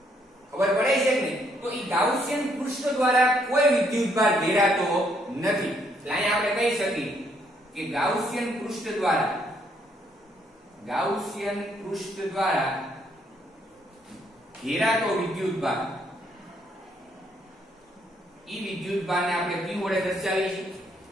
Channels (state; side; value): normal; both; correlation 0.70